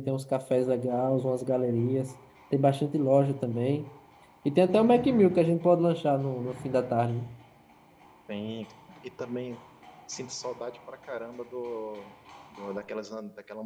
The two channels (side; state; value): both; identical; correlation 1.00